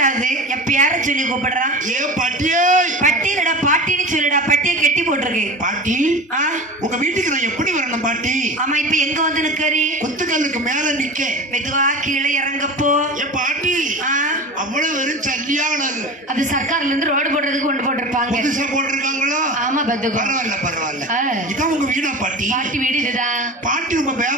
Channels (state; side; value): normal; both; correlation 0.32